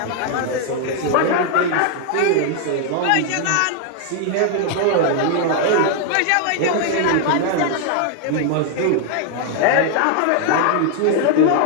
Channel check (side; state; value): both; different; correlation 0.00